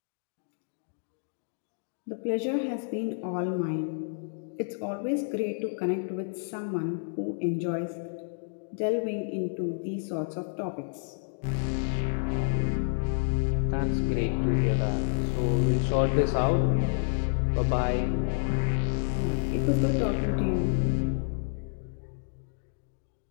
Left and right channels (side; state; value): right; silent; digital silence